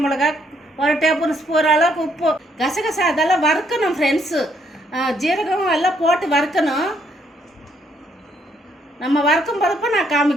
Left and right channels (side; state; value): both; normal; correlation 0.71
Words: மிளகா, 1 டேபிள் ஸ்பூன் அளவுக்கு உப்பு. கசகசா அதெல்லாம் வறுக்கணும் ஃப்ரெண்ட்ஸு. ஜீரகம் எல்லாம் போட்டு வறுக்கணும். நம்ம வறுக்கும் போதப்போ நான்